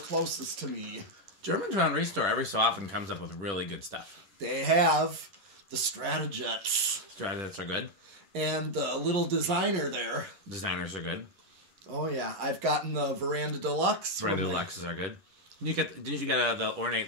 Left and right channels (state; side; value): late; left; 11 ms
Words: to me. Germantown Restore every so often comes up with really good stuff. They have the Stratojets. Stratojets are good. And the little designer there. Designers are good. Oh yeah, I've gotten the Veranda Deluxe. Veranda Deluxes are good. Didn't you get the ornate